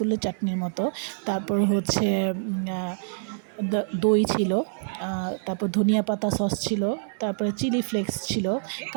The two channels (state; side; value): silent; left; digital silence